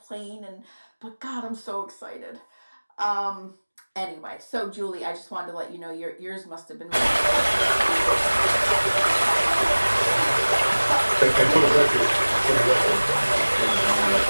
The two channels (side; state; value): both; inverted; correlation -1.00